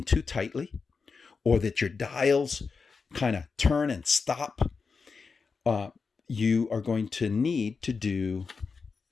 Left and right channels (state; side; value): quieter; right; 4.9 dB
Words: too tightly, or that your dials kind of turn and stop, you are going to need to do